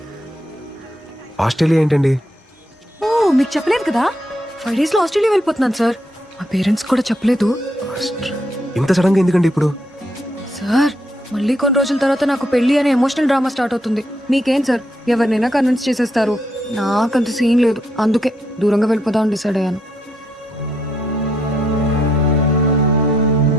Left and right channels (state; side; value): normal; both; correlation 0.76